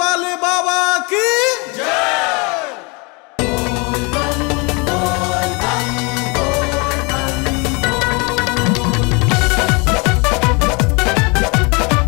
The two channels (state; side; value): quieter; right; 29.7 dB